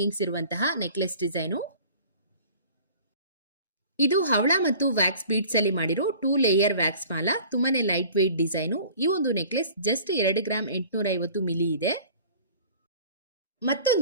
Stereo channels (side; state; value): both; inverted; correlation -0.47